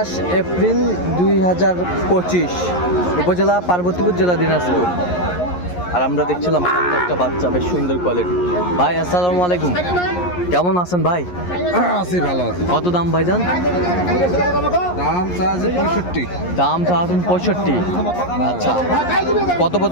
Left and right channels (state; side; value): late; right; 11 ms